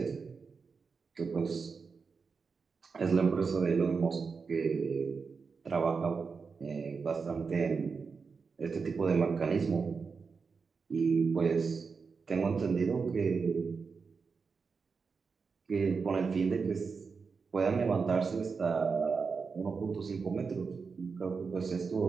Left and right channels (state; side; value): quieter; left; 5.1 dB